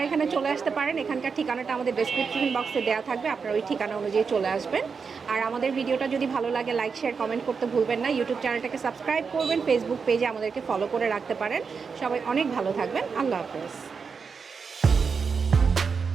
এখানে চলে আসতে পারেন, এখানকার ঠিকানাটা আমাদের ডেসক্রিপশন বক্সে দেওয়া থাকবে, আপনারা ওই ঠিকানা অনুযায়ী চলে আসবেন। আর আমাদের ভিডিওটা যদি ভালো লাগে লাইক শেয়ার কমেন্ট করতে ভুলবেন না। ইউটিউব চ্যানেলটাকে সাবস্ক্রাইব করবেন, ফেসবুক পেজে আমাদেরকে ফলো করে রাখতে পারেন। সবাই অনেক ভালো থাকবেন। আল্লাহ হাফেজ।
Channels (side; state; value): left; quieter; 5.5 dB